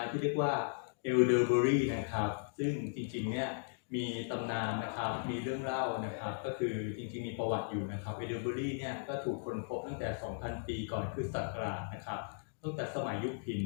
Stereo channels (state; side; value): silent; right; digital silence